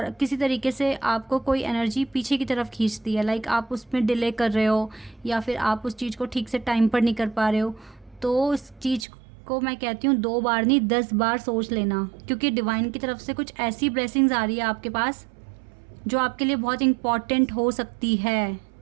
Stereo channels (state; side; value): drops out; left; at 9.1 s